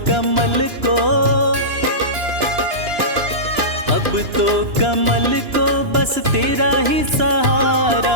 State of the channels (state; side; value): late; left; 2.9 ms